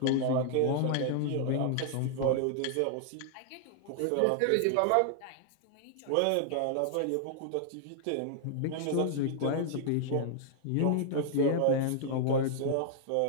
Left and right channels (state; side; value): different; both; correlation -0.01